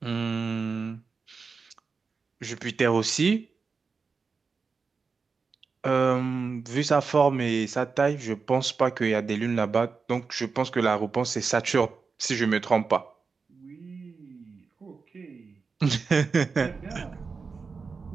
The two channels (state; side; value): quieter; left; 4.9 dB